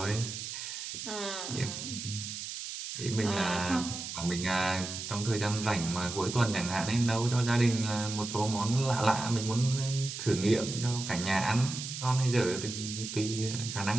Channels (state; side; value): noise; right; hiss, 7 dB below the sound